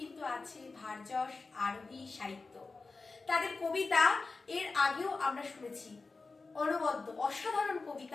আছে ভারযশ আরোহী সাহিত্য। তাদের কবিতা এর আগেও আমরা শুনেছি, অনবদ্য অসাধারণ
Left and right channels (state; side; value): quieter; right; 3.9 dB